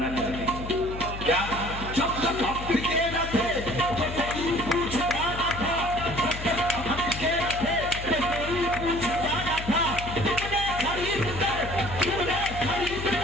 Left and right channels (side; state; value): left; noise; hum, 9 dB below the sound